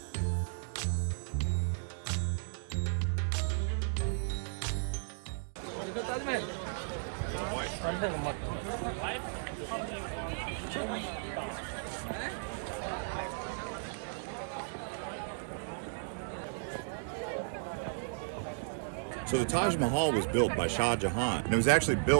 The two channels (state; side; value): silent; left; digital silence